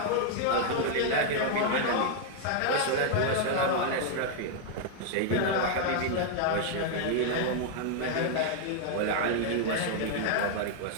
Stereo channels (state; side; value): different; both; correlation 0.00